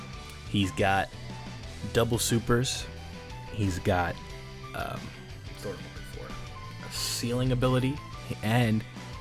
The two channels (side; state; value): both; identical; correlation 1.00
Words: He's got double supers. He's got sort of looking for a ceiling ability, and